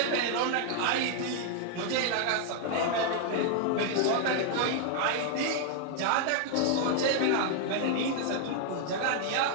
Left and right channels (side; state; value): both; different; correlation 0.00